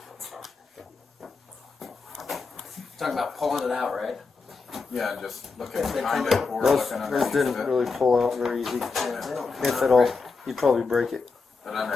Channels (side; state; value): right; quieter; 4.4 dB